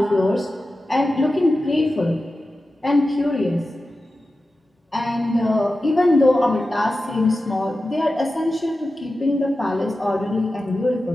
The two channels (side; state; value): both; normal; correlation 0.93